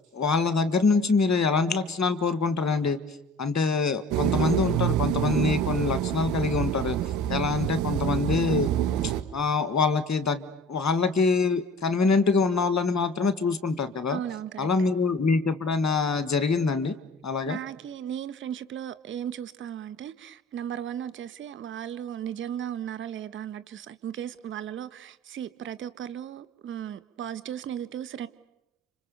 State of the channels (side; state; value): both; normal; correlation 0.44